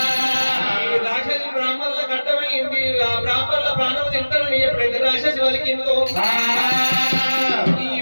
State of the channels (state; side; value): inverted; both; correlation -1.00